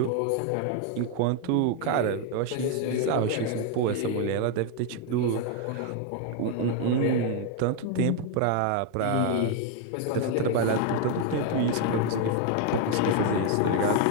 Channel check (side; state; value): both; different; correlation 0.00